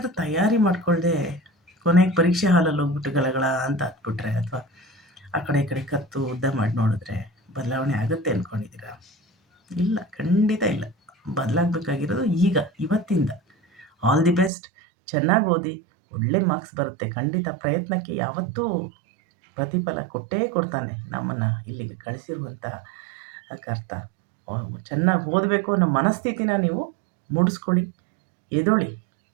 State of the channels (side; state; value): left; drops out; at 14.5 s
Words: ತಯಾರಿ ಮಾಡಿಕೊಳ್ಳದೆ ಕೊನೆಗೆ ಪರೀಕ್ಷೆ ಹಾಲಲ್ಲಿ ಹೋಗ್ಬಿಟ್ಟು ಗಲಗಳ ಅಂತ ಹತ್ಬಿಟ್ರೆ, ಅಥವಾ ಆ ಕಡೆ ಈ ಕಡೆ ಕತ್ತು ಉದ್ದ ಮಾಡಿ ನೋಡಿದ್ರೆ ಬದಲಾವಣೆ ಆಗುತ್ತೆ ಅಂದ್ಕೊಂಡಿದ್ದೀರಾ? ಇಲ್ಲ, ಖಂಡಿತ ಇಲ್ಲ. ಬದಲಾಗಬೇಕಾಗಿರೋದು ಈಗ, ಇವತ್ತಿಂದ. All the best. ಚೆನ್ನಾಗಿ ಓದಿ, ಒಳ್ಳೆ ಮಾರ್ಕ್ಸ್ ಬರುತ್ತೆ ಖಂಡಿತ. ಪ್ರಯತ್ನಕ್ಕೆ ಯಾವತ್ತೂ ಪ್ರತಿಫಲ ಕೊಟ್ಟೇ ಕೊಡ್ತಾನೆ ನಮ್ಮನ್ನು ಇಲ್ಲಿಗೆ ಕಳಿಸಿರುವಂಥ ಕರ್ತ. ಚೆನ್ನಾಗಿ ಓದಬೇಕು ಅನ್ನೋ ಮನಸ್ಥಿತಿನ ನೀವು ಮೂಡಿಸ್ಕೊಳ್ಳಿ. ಎದ್ದೇಳಿ,